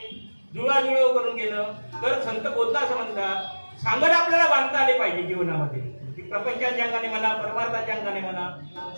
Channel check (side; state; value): both; inverted; correlation -1.00